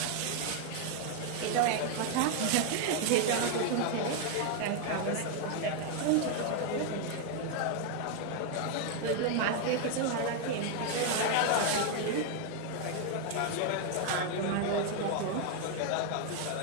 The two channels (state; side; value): different; both; correlation 0.00